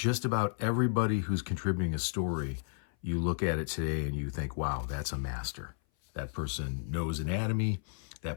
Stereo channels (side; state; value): right; silent; 56 dB below the other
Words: about everybody who's contributing a story, you look at it today and you think, wow, that's a master. That person knows anatomy.